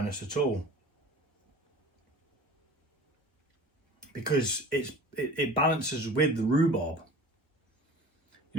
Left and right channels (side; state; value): both; normal; correlation 0.40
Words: at all, because it balances with the rhubarb.